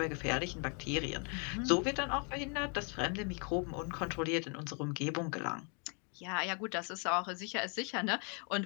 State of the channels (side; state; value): right; quieter; 38.4 dB